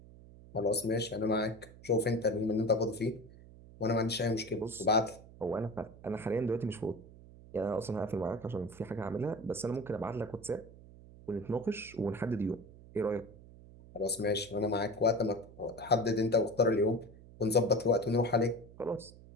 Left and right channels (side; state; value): right; noise; hum, 20 dB below the sound